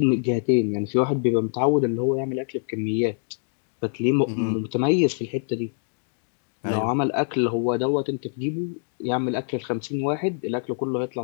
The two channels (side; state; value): right; silent; 62 dB below the other